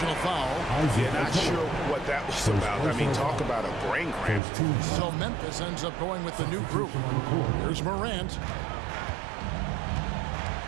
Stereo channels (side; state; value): left; drops out; at 4.4 s